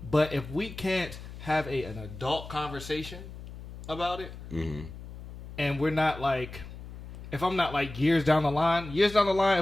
But if we can't have an adult conversation about it, and we're not like, if I'm not like years down the line,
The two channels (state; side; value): noise; left; hum, 13 dB below the sound